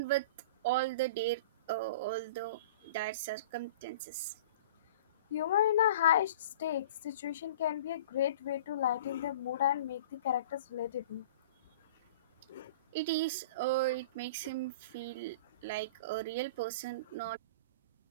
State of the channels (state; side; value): inverted; both; correlation -0.41